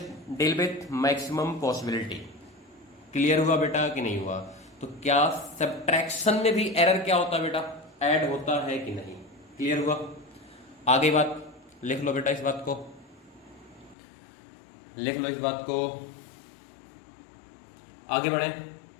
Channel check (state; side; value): drops out; right; at 14.0 s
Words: deal with maximum possibility. Clear हुआ बेटा कि नहीं हुआ? तो क्या सब्ट्रैक्शन में भी एरर क्या होता है बेटा? ऐड होता है कि नहीं? क्लियर हुआ? आगे बात लिख लो बेटा, इस बात को लिख लो, इस बात को आगे बढ़े।